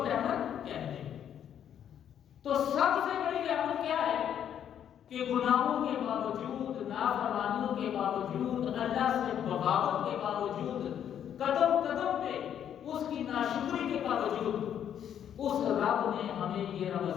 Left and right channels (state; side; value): quieter; right; 9.5 dB